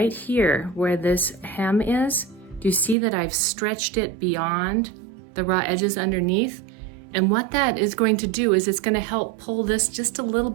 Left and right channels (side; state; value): left; drops out; at 3.0 s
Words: here where this hem is, do you see that I've stretched it beyond the raw edges underneath? And what that is going to do is it's going to help pull this just a little